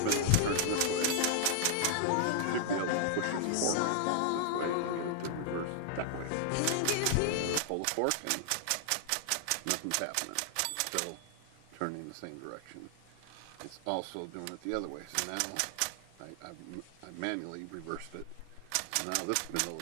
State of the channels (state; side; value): different; both; correlation 0.00